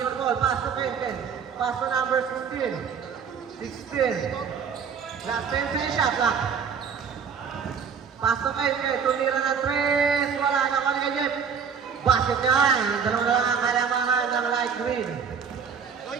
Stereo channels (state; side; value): quieter; left; 6.6 dB